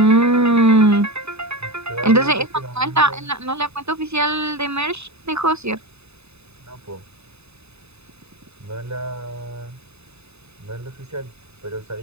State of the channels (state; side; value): late; left; 0.80 ms